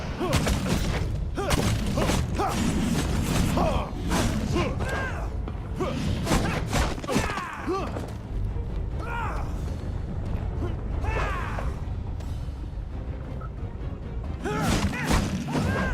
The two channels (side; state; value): both; identical; correlation 1.00